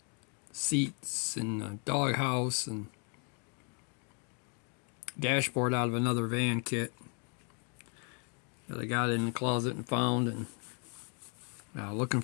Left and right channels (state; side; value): quieter; right; 38.7 dB